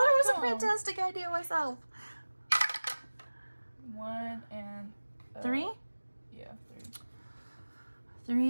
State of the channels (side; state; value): both; inverted; correlation -1.00